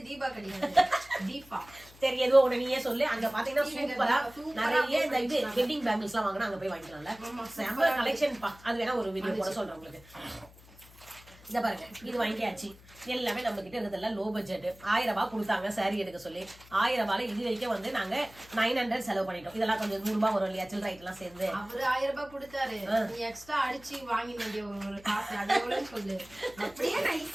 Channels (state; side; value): noise; left; hum, 23 dB below the sound